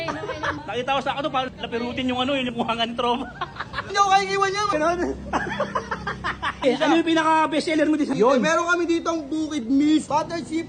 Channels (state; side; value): identical; both; correlation 1.00